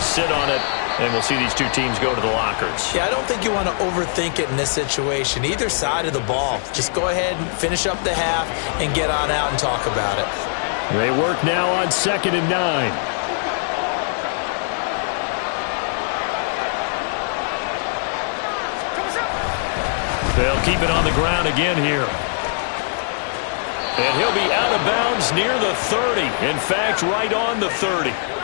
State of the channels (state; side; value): silent; right; 65 dB below the other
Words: sit on it, and we'll see these two teams go to the lockers. Yeah, I don't think you want to overthink it in this situation. Either side of the ball. Just go ahead and finish up the half and get on out and talk about it. They work now on 2nd and 9. They'll keep it on the ground again here. And he'll be out of bounds near the 30. In fact, right on the 30.